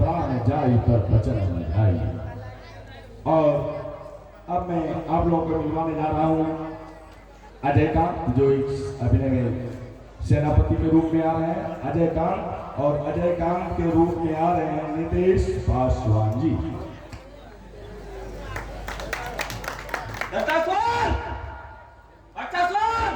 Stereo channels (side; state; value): both; identical; correlation 1.00